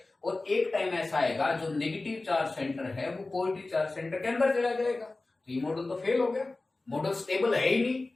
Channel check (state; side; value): quieter; right; 3.2 dB